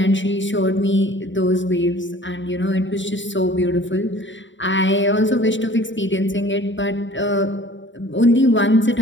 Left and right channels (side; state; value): right; late; 0.54 ms